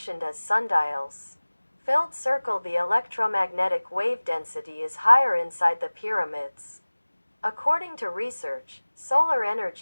as sundials. Filled circle. The electromagnetic wave density is higher inside the pyramids. According to research, solar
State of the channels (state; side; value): inverted; both; correlation -1.00